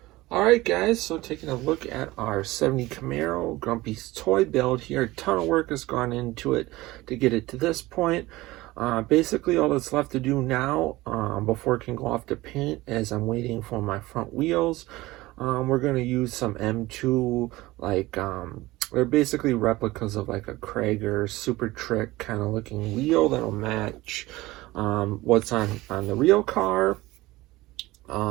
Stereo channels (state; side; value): quieter; left; 19.1 dB